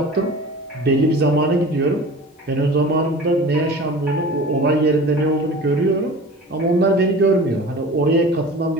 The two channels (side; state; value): both; normal; correlation 0.39